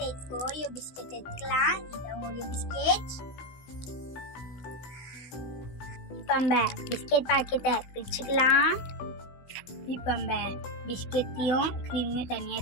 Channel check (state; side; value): late; right; 16 ms